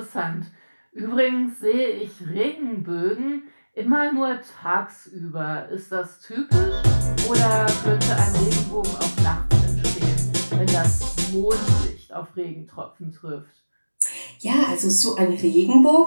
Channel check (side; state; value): both; inverted; correlation -1.00